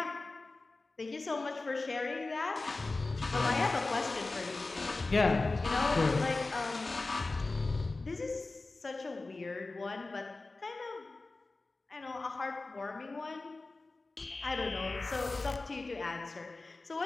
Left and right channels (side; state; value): right; quieter; 3.4 dB